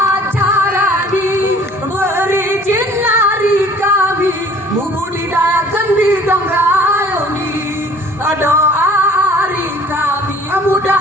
di berizin lari kami, membudidayakan di Dangrayoni, doa hari kami,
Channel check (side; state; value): both; normal; correlation 0.52